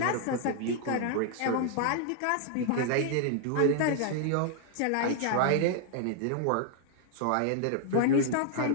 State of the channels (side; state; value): both; different; correlation 0.00